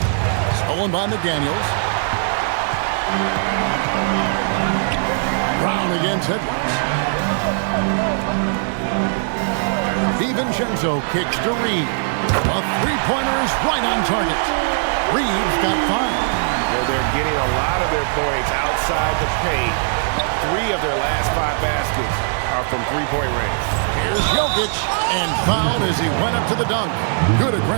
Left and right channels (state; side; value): silent; left; digital silence